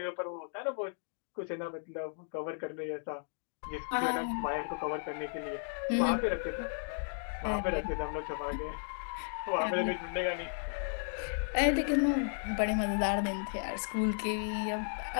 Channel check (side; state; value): right; silent; digital silence